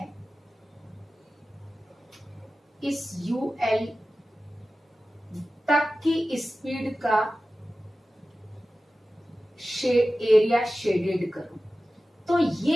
इस UL तक की स्पीड का एरिया शेडेड करूं तो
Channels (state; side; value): normal; both; correlation 0.95